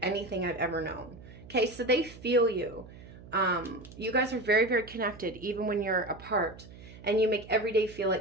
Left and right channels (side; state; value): right; noise; hum, 18 dB below the sound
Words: I've ever known. Okay, so they feel you. You guys are very, very connected, even when you're apart. And you make every day feel